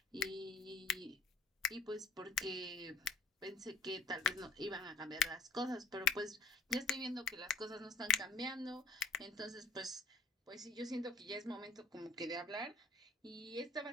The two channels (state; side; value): quieter; right; 3.9 dB